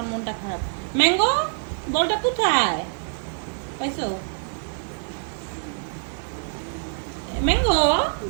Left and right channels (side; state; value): left; silent; digital silence